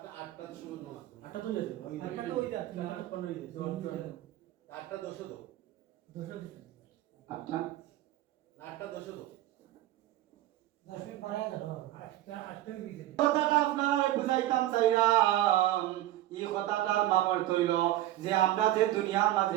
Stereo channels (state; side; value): quieter; left; 14.5 dB